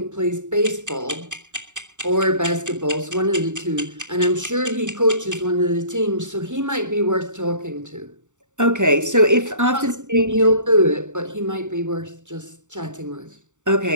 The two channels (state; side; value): late; left; 0.85 ms